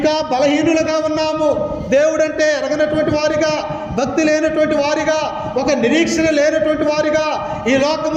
బలహీనులుగా ఉన్నాము. దేవుడంటే ఎరగనటువంటి వారిగా, భక్తి లేనటువంటి వారిగా, ఒక నిరీక్షణ లేనటువంటి వారిగా, ఈ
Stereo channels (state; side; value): identical; both; correlation 1.00